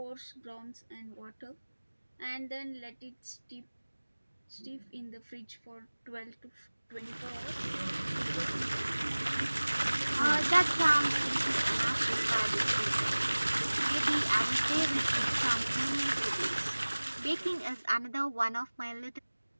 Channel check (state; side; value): inverted; both; correlation -1.00